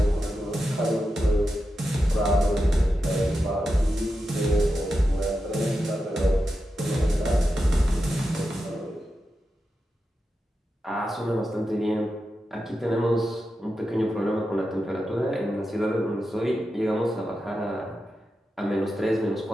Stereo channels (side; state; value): both; normal; correlation 0.89